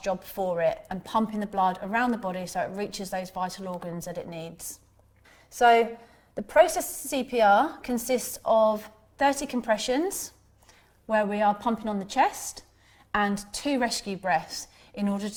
for it and pumping the blood around the body so it reaches those vital organs that it needs. So the process of CPR consists of 30 compressions where we are pumping on the chest and 2 rescue breaths in order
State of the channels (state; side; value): identical; both; correlation 1.00